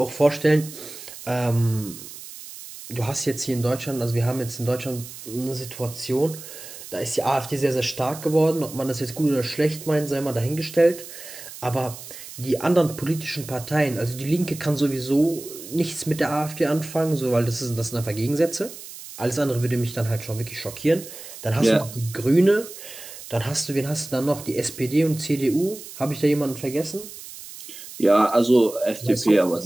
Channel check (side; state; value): right; noise; hiss, 14 dB below the sound